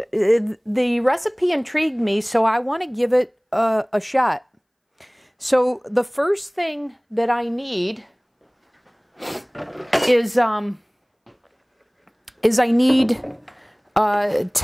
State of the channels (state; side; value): identical; both; correlation 1.00